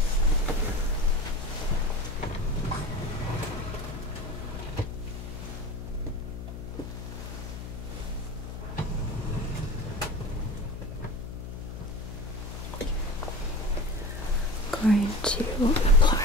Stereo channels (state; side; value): noise; left; hum, 9 dB below the sound